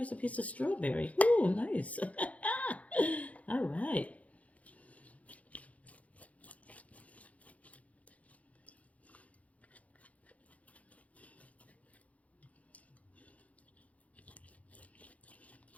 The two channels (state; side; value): late; right; 0.068 ms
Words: a piece of strawberry. Ooh, nice. All right.